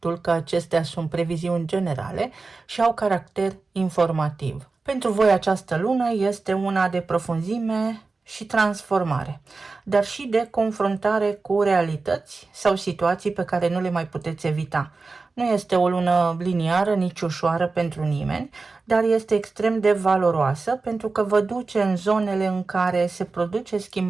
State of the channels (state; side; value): quieter; left; 3.9 dB